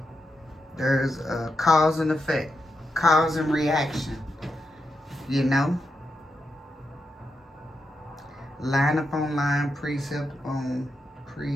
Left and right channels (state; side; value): normal; both; correlation 0.85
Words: There's a cause and effect, cause and reaction, you know? Line upon line, precept upon